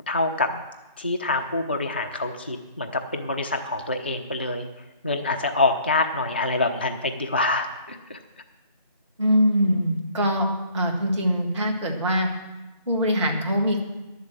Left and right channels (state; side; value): inverted; both; correlation -0.57